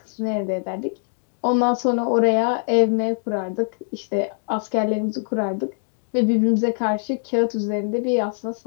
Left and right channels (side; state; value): right; silent; 64 dB below the other